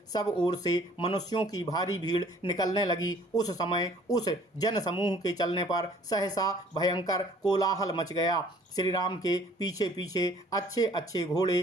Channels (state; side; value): normal; both; correlation 0.55